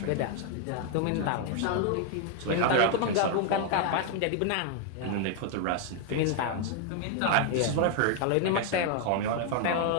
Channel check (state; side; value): different; both; correlation 0.00